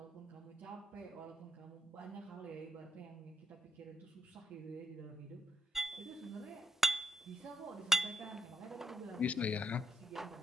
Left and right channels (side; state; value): both; normal; correlation 0.82